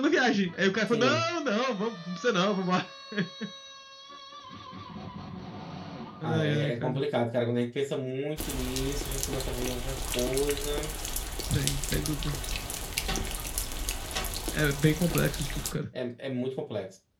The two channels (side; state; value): both; identical; correlation 1.00